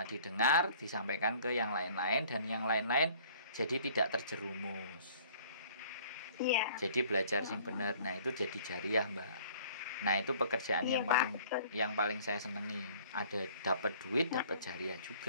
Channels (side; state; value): both; inverted; correlation -0.54